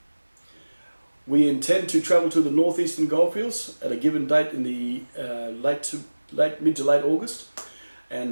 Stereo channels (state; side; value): inverted; both; correlation -1.00